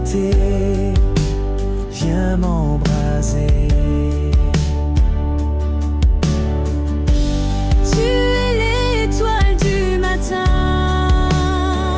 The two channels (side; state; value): both; identical; correlation 1.00